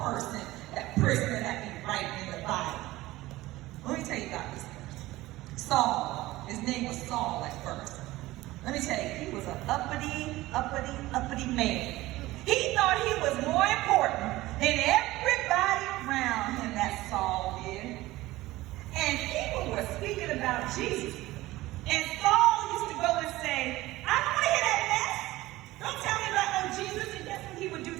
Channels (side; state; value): left; quieter; 17.9 dB